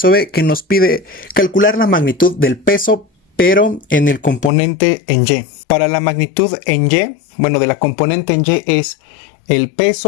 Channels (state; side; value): drops out; right; at 4.5 s